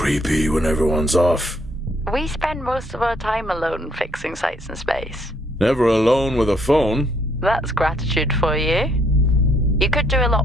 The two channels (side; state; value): both; normal; correlation 0.68